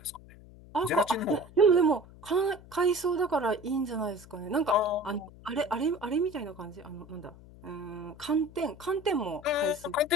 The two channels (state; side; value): noise; left; hum, 20 dB below the sound